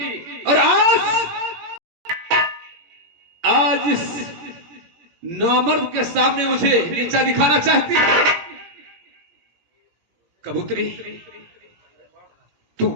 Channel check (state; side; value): late; left; 17 ms